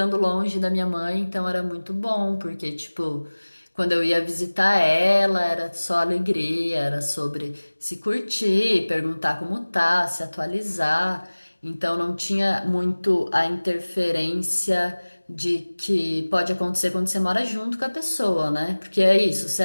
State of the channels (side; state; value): both; inverted; correlation -1.00